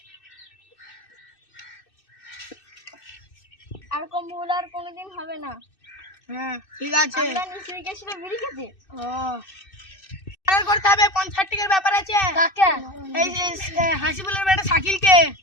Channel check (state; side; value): late; right; 2.6 ms